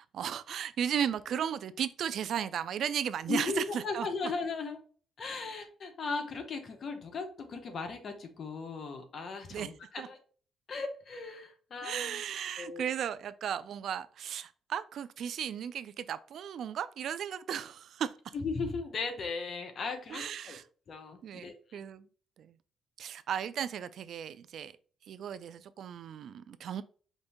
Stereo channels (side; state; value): left; quieter; 3.4 dB